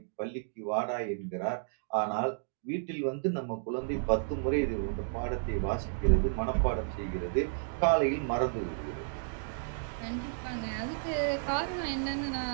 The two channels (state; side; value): silent; left; digital silence